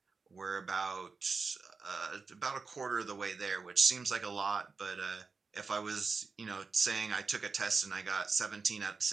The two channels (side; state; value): left; quieter; 4.6 dB